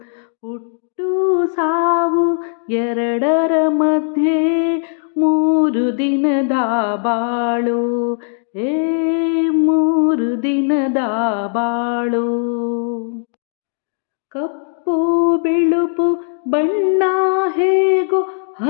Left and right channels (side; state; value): right; silent; digital silence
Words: ಹುಟ್ಟು ಸಾವು ಎರಡರ ಮಧ್ಯೆ 3 ದಿನದ ಬಾಳು. 3 ದಿನದ ಬಾಳು. ಕಪ್ಪು ಬಿಳುಪು ಬಣ್ಣ ಹೇಗೋ